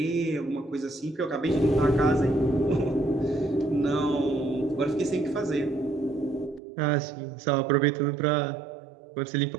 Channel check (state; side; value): drops out; left; at 6.6 s